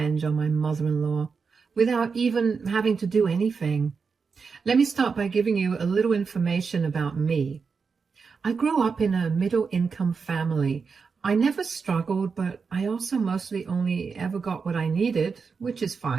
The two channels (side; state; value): left; quieter; 5.3 dB